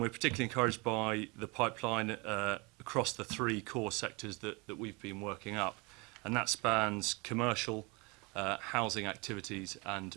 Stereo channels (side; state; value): left; quieter; 27.9 dB